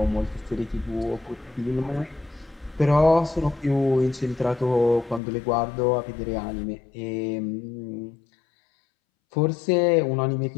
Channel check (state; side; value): drops out; right; at 5.2 s